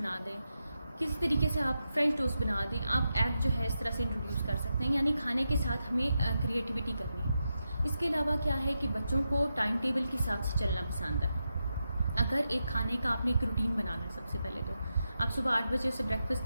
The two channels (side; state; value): both; inverted; correlation -0.88